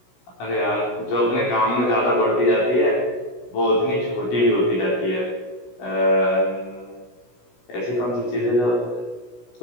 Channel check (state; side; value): late; right; 16 ms